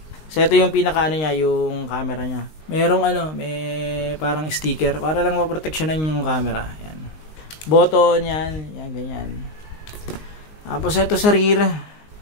So ito yung pinaka niya, yung camera niya. Merong may parang sticker para lang maproteksyonan yung camera. Yan. Button yan, yan ganyan. Tapos ito sa rear.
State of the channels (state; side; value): late; right; 19 ms